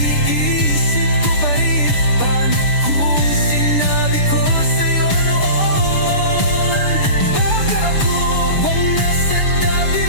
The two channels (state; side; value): late; right; 6.8 ms